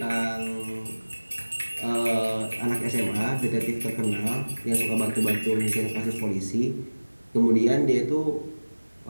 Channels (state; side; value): inverted; both; correlation -1.00